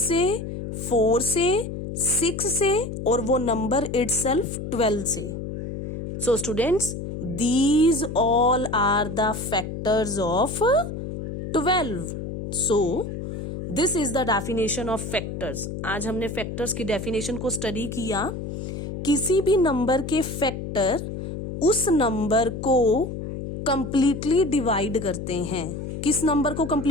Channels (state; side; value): noise; left; hum, 7 dB below the sound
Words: 4 से, 6 से, और वो नंबर इटसेल्फ 12 से। So students, these all are the factors of 12. So this is the definition of factors. आज हमने factors की definition को study किया। किसी भी नंबर के फैक्टर उस नंबर को कंप्लीटली डिवाइड करते हैं। किस नंबर को